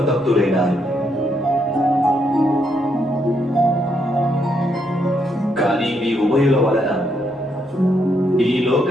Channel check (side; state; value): both; normal; correlation 0.76